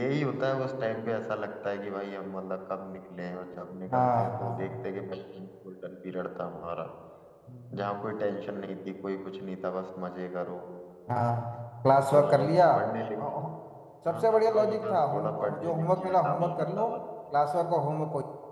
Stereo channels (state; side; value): identical; both; correlation 1.00